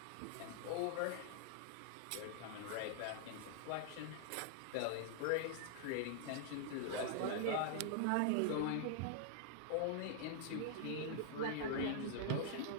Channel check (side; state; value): both; different; correlation 0.00